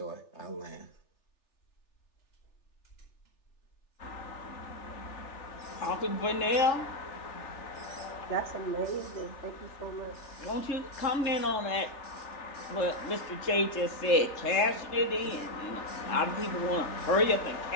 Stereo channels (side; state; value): right; late; 3.4 ms